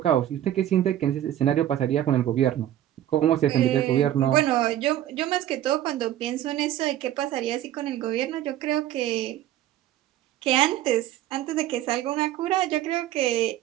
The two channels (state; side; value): quieter; left; 12.4 dB